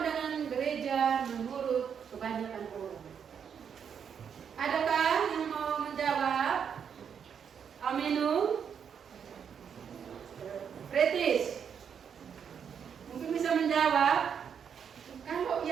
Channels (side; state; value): left; quieter; 7.5 dB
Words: gereja menurut kebanyakan orang? Adakah yang mau menjawab? Aminu? Pretis? Mungkin bisa menjawab. Kalau